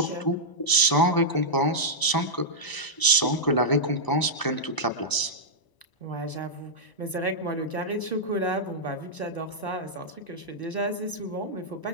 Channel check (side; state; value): right; late; 1.0 ms